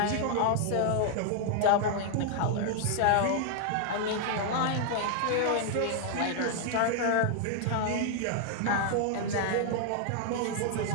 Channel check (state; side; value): different; both; correlation 0.00